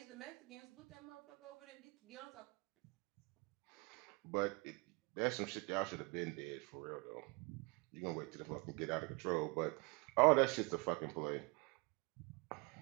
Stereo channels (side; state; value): left; quieter; 27.3 dB